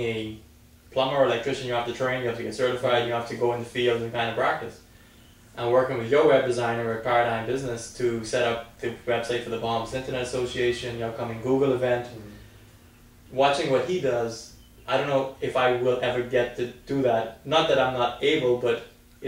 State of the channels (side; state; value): both; identical; correlation 1.00